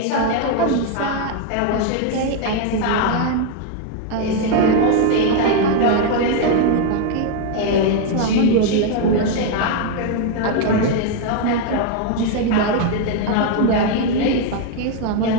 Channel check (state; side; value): different; both; correlation 0.00